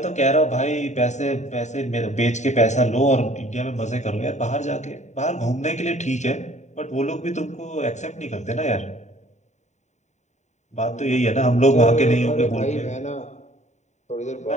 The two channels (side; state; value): right; late; 0.34 ms